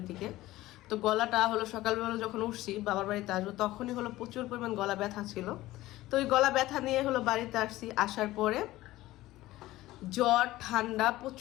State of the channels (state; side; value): quieter; right; 16.9 dB